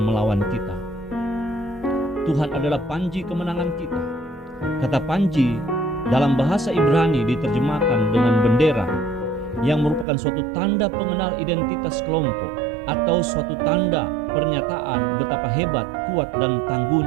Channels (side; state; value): left; drops out; at 10.1 s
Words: melawan kita? Tuhan adalah panji kemenangan kita. Kata panji dalam bahasa Ibrani diterjemahkan dengan bendera, yang merupakan suatu tanda pengenal identitas kelompok atau suatu tanda pernyataan betapa hebat, kuat, dan